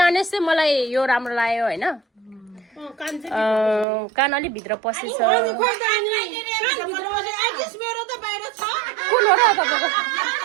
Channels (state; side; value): drops out; left; at 3.9 s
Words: चाहिँ मलाई यो राम्रो लाग्यो होइन कान अलिक भित्र पसेछ कुन हो र तपाईँको